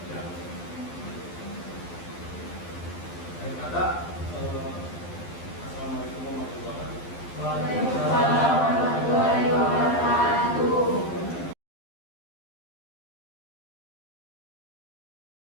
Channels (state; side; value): late; right; 12 ms